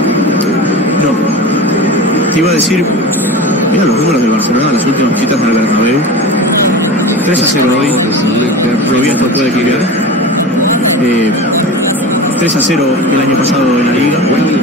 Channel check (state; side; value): normal; both; correlation 0.31